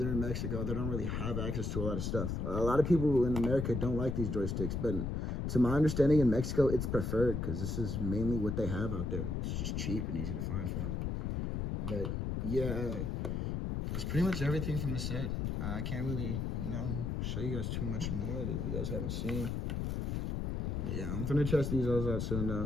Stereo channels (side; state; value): left; noise; rumble, 1 dB below the sound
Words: in Mexico. They don't really have access to a lot of stuff. A lot of people in America don't like these joysticks, but to my understanding in Mexico, it's preferred because this is mainly what they have out there. It's just cheap and easy to find for them. But yeah, it's pretty much everything from the set. I can't really, you know, show you guys too much more that you guys haven't seen. But yeah, I'm gonna test these all out soon